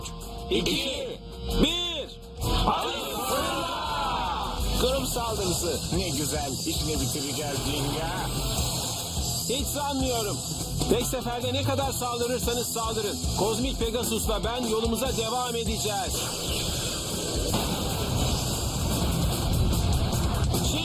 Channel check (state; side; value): identical; both; correlation 1.00